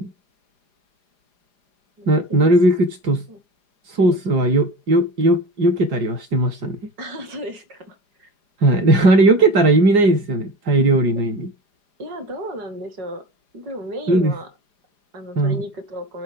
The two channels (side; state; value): left; late; 4.9 ms